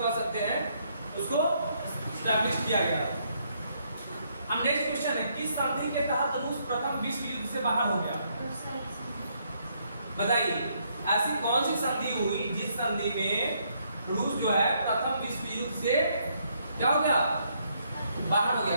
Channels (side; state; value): both; inverted; correlation -0.72